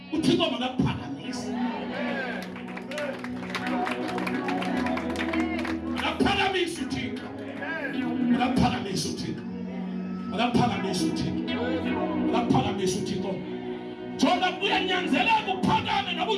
uThixo makaphakamise. Makaphakamise uThixo. Makaphakamise uThixo. Makaphakamise uThixo. Makaphakamise uThixo. Jonga kuyanyanzeleka uphakame noba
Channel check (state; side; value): identical; both; correlation 1.00